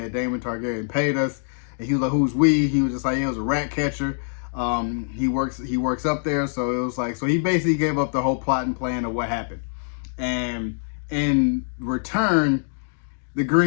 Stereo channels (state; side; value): silent; right; digital silence